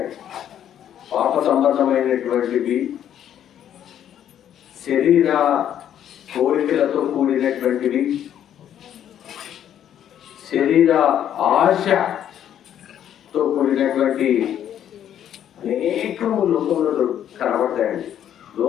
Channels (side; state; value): right; quieter; 10.2 dB